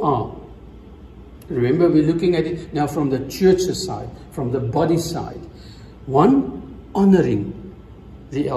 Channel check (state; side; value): identical; both; correlation 1.00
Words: are, remember, we're looking at it now from the church's side, from the body side. 1, honoring the